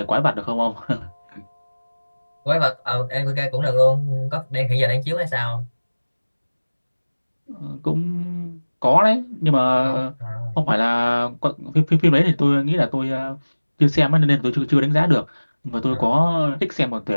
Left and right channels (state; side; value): inverted; both; correlation -1.00